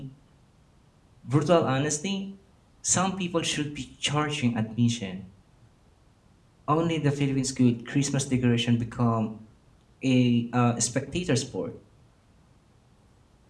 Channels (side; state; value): both; identical; correlation 1.00